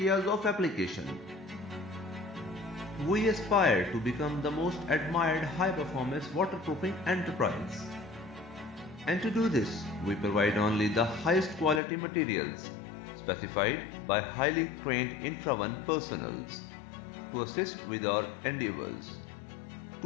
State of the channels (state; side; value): drops out; right; at 11.8 s